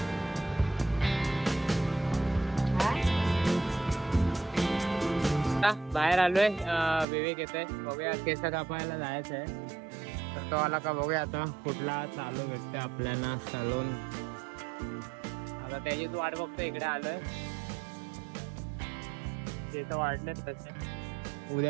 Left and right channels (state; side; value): drops out; left; at 7.1 s